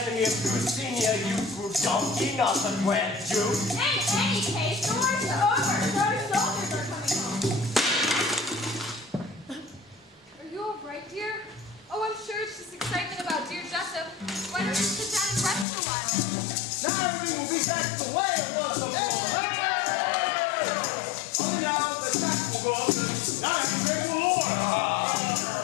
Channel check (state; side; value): drops out; right; at 15.7 s